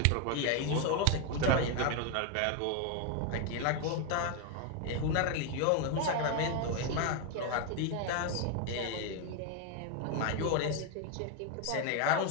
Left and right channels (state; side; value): different; both; correlation 0.01